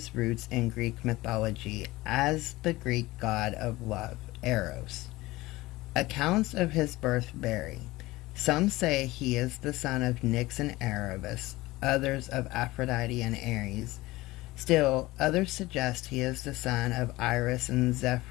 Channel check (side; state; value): right; quieter; 19.3 dB